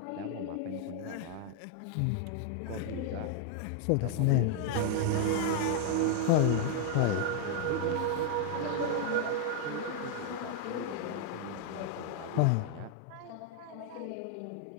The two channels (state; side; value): different; both; correlation 0.00